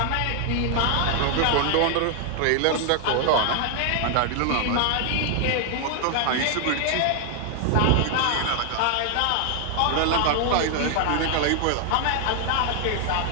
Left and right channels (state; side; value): different; both; correlation 0.00